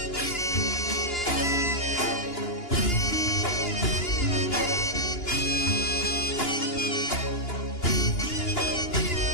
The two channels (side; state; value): right; late; 2.9 ms